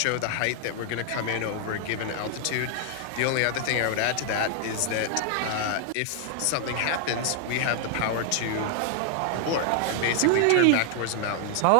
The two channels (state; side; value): different; both; correlation 0.00